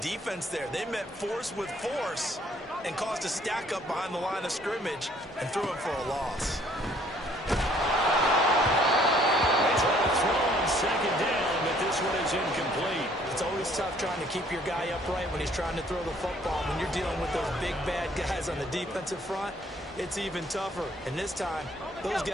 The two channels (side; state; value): both; normal; correlation 0.61